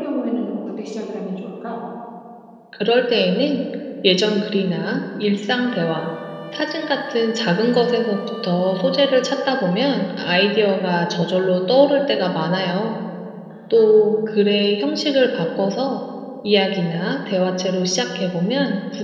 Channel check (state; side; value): identical; both; correlation 1.00